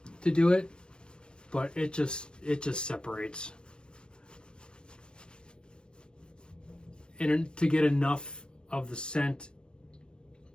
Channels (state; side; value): late; right; 0.054 ms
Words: to do it, but it just separates. And to get enough of the scent